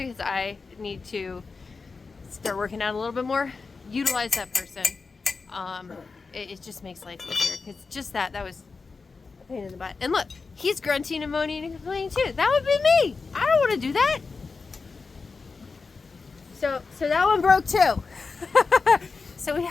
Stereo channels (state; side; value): quieter; right; 4.4 dB